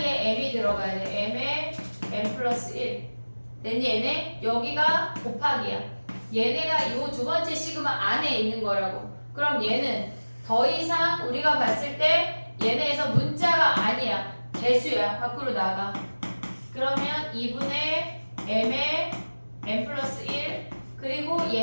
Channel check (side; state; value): both; inverted; correlation -1.00